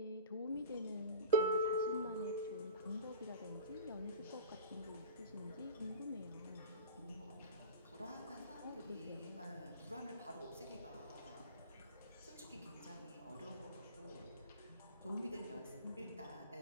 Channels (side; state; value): both; inverted; correlation -0.33